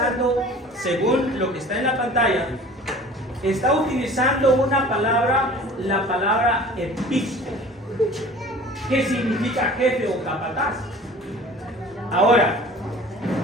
según lo que está en la pantalla, está utilizando una palabra, la palabra episco, que significa jefe o capataz. Ahora,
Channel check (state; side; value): normal; both; correlation 0.44